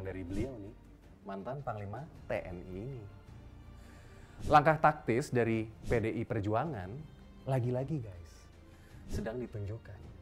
dari beliau nih, mantan Panglima TNI ini. Langkah taktis dari PDI Perjuangan, lagi-lagi guys, sedang ditunjukkan.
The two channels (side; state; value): both; identical; correlation 1.00